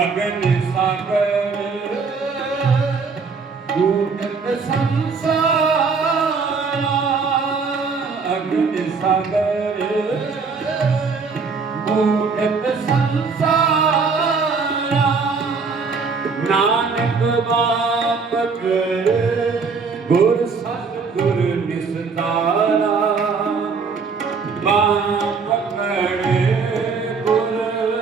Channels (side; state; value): left; quieter; 4.9 dB